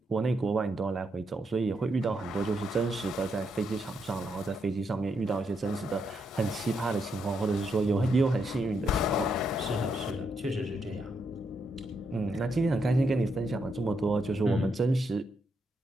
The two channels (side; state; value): both; normal; correlation 0.80